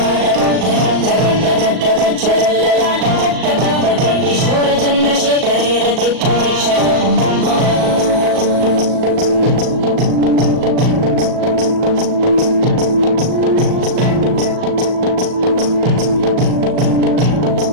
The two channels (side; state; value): left; late; 38 ms